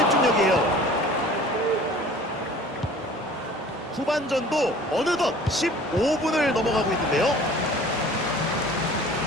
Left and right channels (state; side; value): normal; both; correlation 0.47